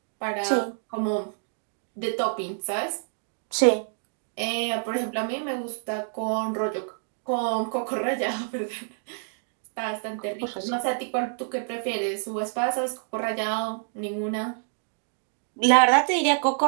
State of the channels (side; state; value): left; silent; digital silence